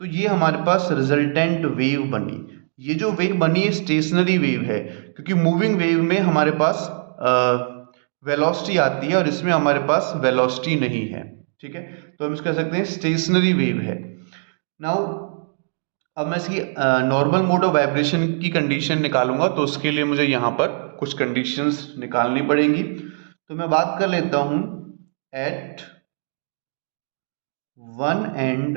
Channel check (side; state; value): left; silent; digital silence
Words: ये हमारे पास रिजल्टेंट वेव बनी। ये जो वेव बनी है स्टेशनरी वेव है, क्योंकि मूविंग वेव में हमारे पास वेलोसिटी आती है और इसमें हमारे पास वेलोसिटी नहीं है। ठीक है, तो हम इसको कह सकते हैं स्टेशनरी वेव है। नाउ अब मैं इसकी नॉर्मल मोड ऑफ वाइब्रेशन की कंडीशन निकालूंगा, तो उसके लिए मुझे यहाँ पर कुछ कंडीशंस निकालनी पड़ेगी। तो मैं बात कर लेता हूं at one